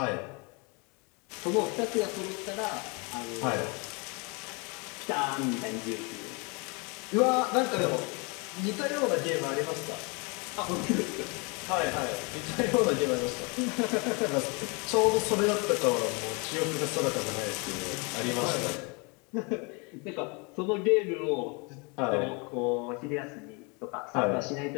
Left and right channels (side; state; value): right; quieter; 31.0 dB